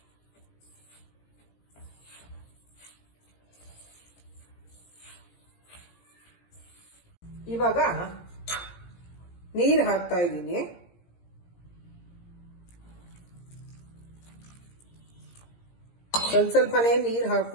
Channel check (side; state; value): right; late; 17 ms